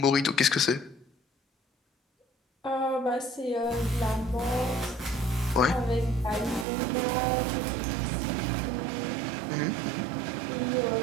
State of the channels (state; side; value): drops out; left; at 6.7 s